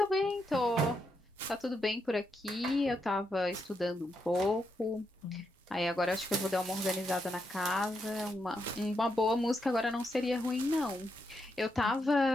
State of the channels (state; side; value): normal; both; correlation 0.82